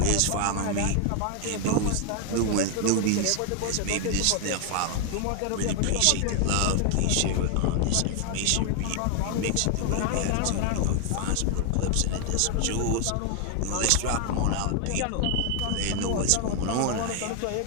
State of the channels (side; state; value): both; different; correlation 0.00